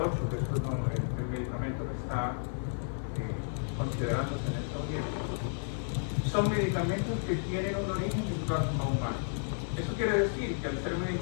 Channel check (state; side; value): silent; right; 56 dB below the other